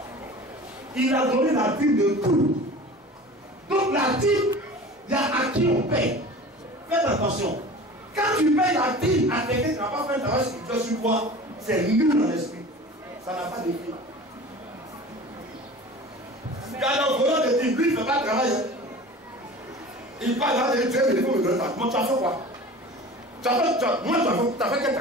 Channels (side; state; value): both; normal; correlation 0.39